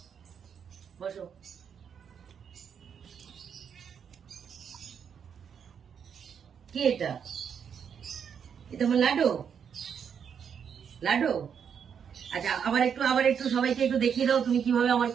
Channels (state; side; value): quieter; left; 7.5 dB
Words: বসো। কি এটা? এটা আমার লাডু, লাডু। আচ্ছা আবার একটু সবাইকে একটু দেখিয়ে দাও তুমি কিভাবে আমার